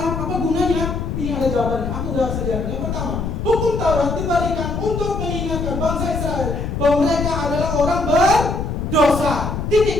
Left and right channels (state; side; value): noise; left; rumble, 3 dB below the sound